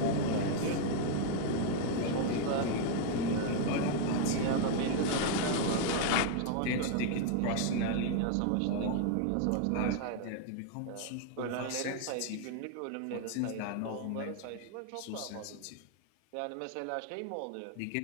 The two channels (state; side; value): different; both; correlation 0.00